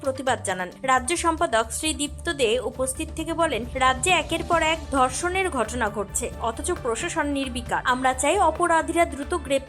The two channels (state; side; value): identical; both; correlation 1.00